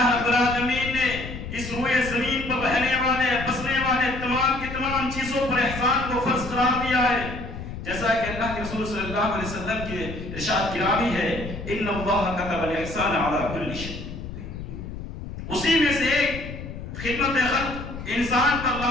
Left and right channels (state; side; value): noise; left; rumble, 9 dB below the sound